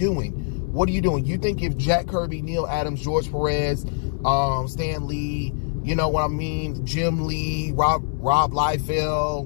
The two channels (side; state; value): right; silent; digital silence